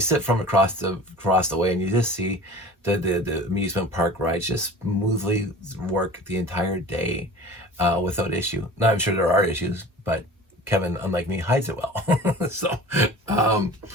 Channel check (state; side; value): normal; both; correlation 0.39